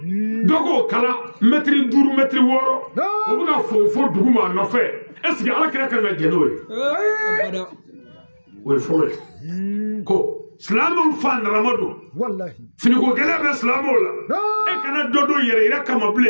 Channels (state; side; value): inverted; both; correlation -1.00